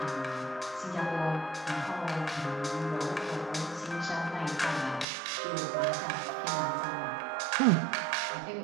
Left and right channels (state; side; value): drops out; left; at 5.1 s